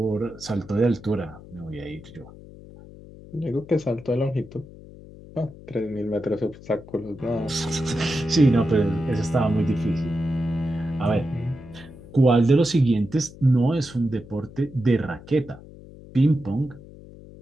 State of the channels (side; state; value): left; noise; hum, 18 dB below the sound